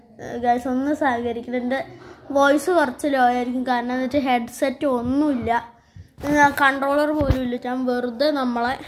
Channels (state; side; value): identical; both; correlation 1.00